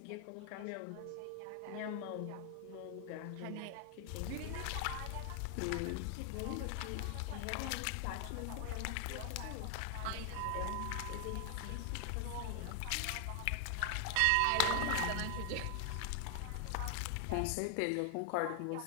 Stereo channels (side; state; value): both; different; correlation 0.00